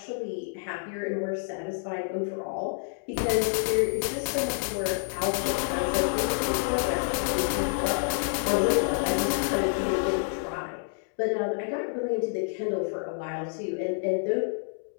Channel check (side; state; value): right; silent; digital silence